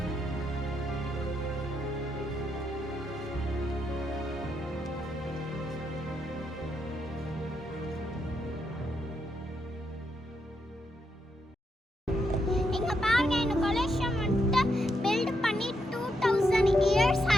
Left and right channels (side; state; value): both; normal; correlation 0.80